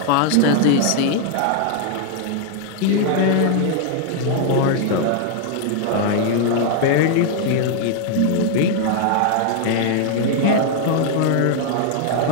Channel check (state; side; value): different; both; correlation 0.00